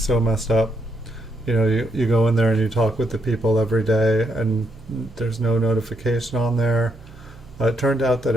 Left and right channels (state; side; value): noise; right; hum, 21 dB below the sound